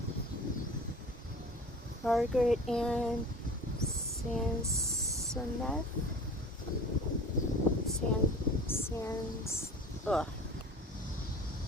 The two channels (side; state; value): both; normal; correlation 0.40